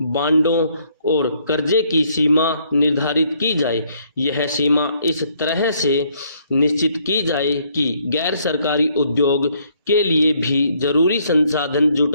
बांडों और कर्जे की सीमा निर्धारित की जाए। यह सीमा इस तरह से निश्चित की जाए कि गैर सरकारी उद्योग के लिए भी जरूरी संसाधन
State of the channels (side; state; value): both; inverted; correlation -0.68